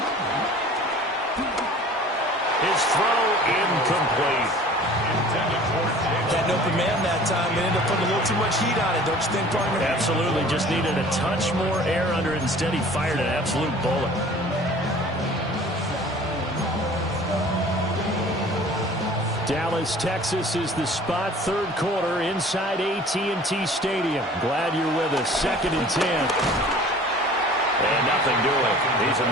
His throw incomplete. Had an open man that time and ended up putting a little too much heat on it, don't you think, partner? Absolutely. Just needed a touch more air under it. Instead, he fired an absolute bullet. Dallas, Texas is the spot. 3rd quarter inside AT&T Stadium. Glad you're with us. 2nd and 10. And nothing doing. He's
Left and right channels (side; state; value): both; normal; correlation 0.46